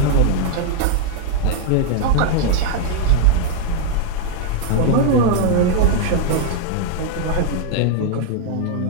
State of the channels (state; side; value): different; both; correlation 0.00